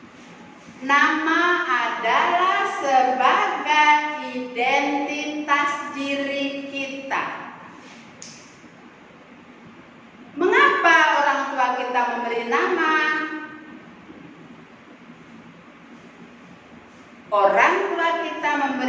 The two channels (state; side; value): identical; both; correlation 1.00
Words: Nama adalah sebagai identitas diri kita. Mengapa orang tua kita memberi nama? Orang tua kita